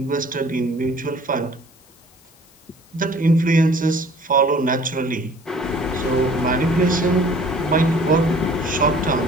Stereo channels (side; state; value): left; noise; hiss, 30 dB below the sound